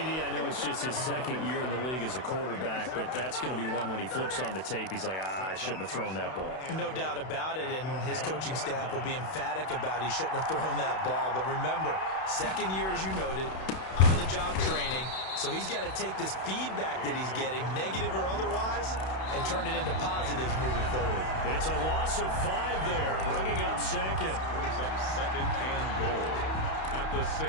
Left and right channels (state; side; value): late; right; 32 ms